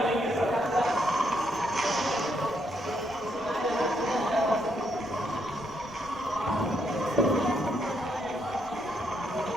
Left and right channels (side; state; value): left; noise; rumble, 22 dB below the sound